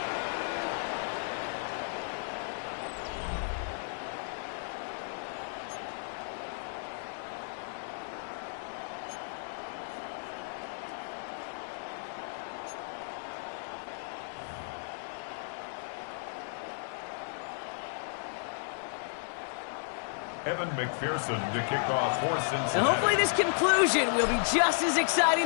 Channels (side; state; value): right; silent; digital silence